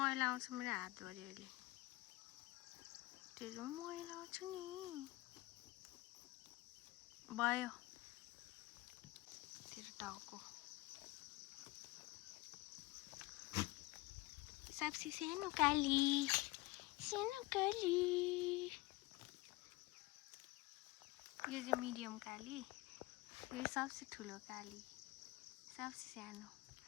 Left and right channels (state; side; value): quieter; right; 20.6 dB